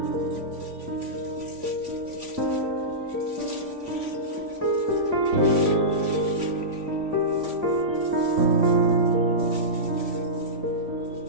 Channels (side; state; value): left; late; 3.5 ms